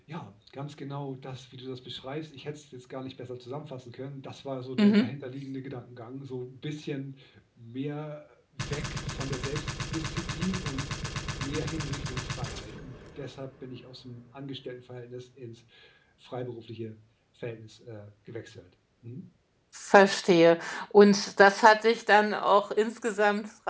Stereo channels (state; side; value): identical; both; correlation 1.00